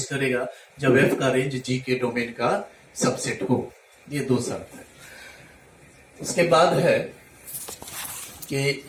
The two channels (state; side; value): identical; both; correlation 1.00